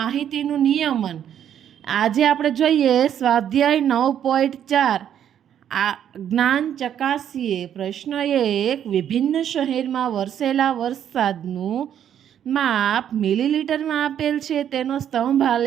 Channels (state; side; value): quieter; left; 9.7 dB